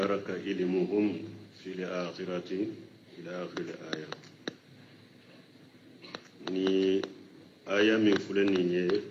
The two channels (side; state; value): both; identical; correlation 1.00